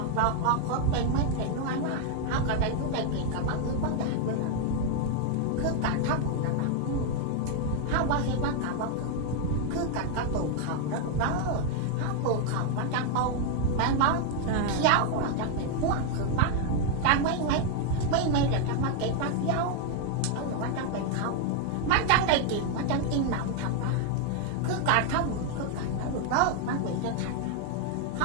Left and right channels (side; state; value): both; different; correlation 0.00